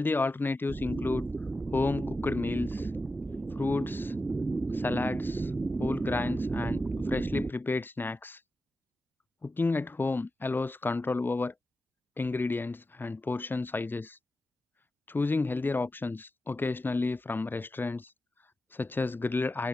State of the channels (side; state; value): both; normal; correlation 0.91